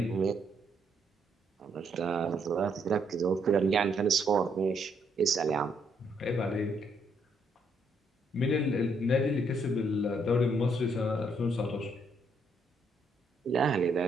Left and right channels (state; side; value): normal; both; correlation 0.72